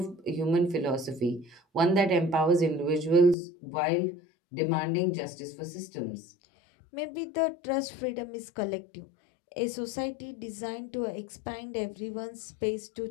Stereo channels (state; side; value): drops out; right; at 3.4 s